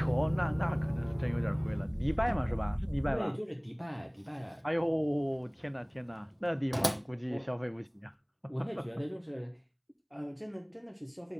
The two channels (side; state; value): both; identical; correlation 1.00